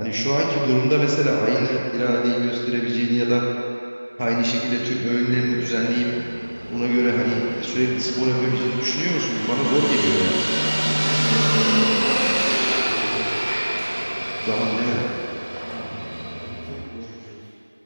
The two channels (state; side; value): inverted; both; correlation -1.00